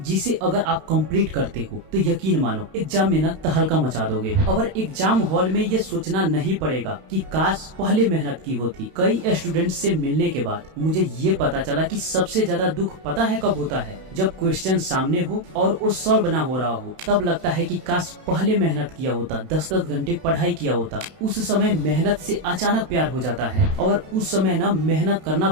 जिसे अगर आप कंप्लीट करते हो तो यकीन मानो एग्जाम में ना तहलका मचा दोगे। और एग्जाम हॉल में ये सोचना नहीं पड़ेगा कि काश पहले मेहनत की होती। कई स्टूडेंट्स से मिलने के बाद मुझे ये पता चला कि सबसे ज्यादा दुख पता है कब होता है, जब क्वेश्चन सामने हो और वो सॉल्व ना हो रहा हो। तब लगता है कि काश पहले मेहनत किया होता, 10-10 घंटे पढ़ाई किया होता। उस समय मेहनत से अचानक प्यार हो जाता है और उस समय ना मेहनत करना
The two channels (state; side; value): late; left; 32 ms